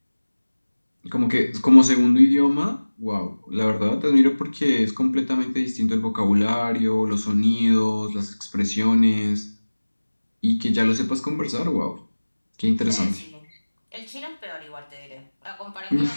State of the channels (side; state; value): both; inverted; correlation -1.00